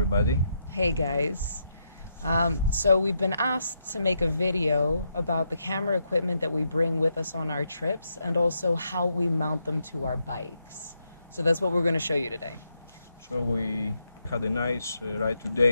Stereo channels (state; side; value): inverted; both; correlation -0.81